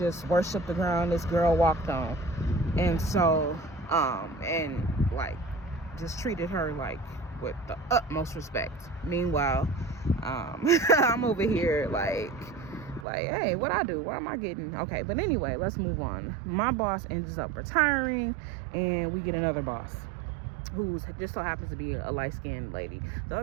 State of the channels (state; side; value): drops out; left; at 13.1 s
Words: worshiped the ground this girl walked on. And so, and like just treated her like with the utmost respect. Meanwhile, I'm over here like, hey, what I do? What am I getting? Okay, but anyway, let's move on. My boss ends up retiring, and we get another boss who just so happens to be a light-skinned lady. The